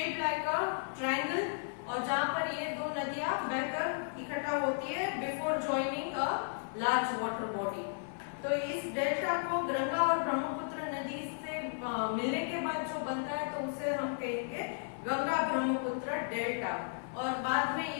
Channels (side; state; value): right; silent; 55 dB below the other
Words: like a triangle, और जहां पर ये 2 नदियां बहकर इकट्ठा होती है before joining a large water body. तो इस डेल्टा को गंगा और ब्रह्मपुत्र नदी से मिलने के बाद जो बनता है तो उसे हम कहेंगे गंगा ब्रह्मपुत्र डेल्टा। और बाद में